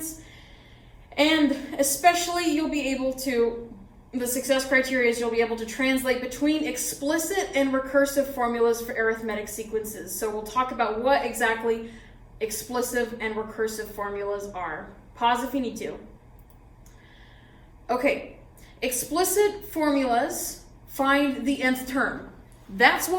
and especially you'll be able to, the success criteria is you'll be able to translate between explicit and recursive formulas for arithmetic sequences. So we'll talk about what exactly explicit and recursive formulas are. Pause if you need to. Okay, explicit formulas find the nth term. That's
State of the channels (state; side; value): identical; both; correlation 1.00